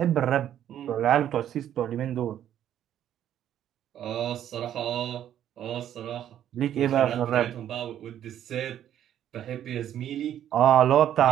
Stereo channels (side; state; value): left; quieter; 10.8 dB